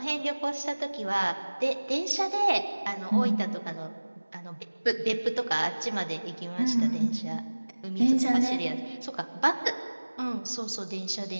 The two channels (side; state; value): both; inverted; correlation -1.00